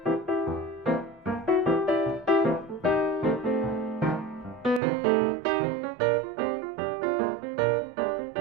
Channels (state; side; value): drops out; left; at 4.8 s